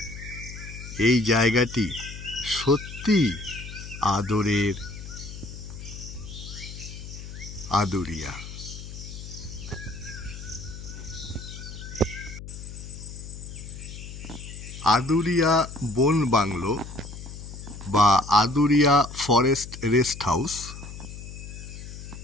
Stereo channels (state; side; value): noise; left; hum, 11 dB below the sound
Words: এই জায়গাটি সত্যি আদরের আদুরিয়া। আদুরিয়া বন বাংলো বা আদুরিয়া ফরেস্ট রেস্ট হাউস